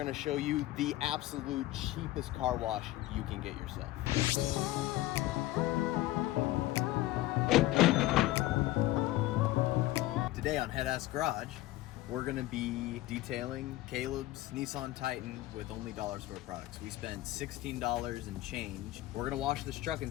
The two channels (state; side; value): quieter; right; 16.4 dB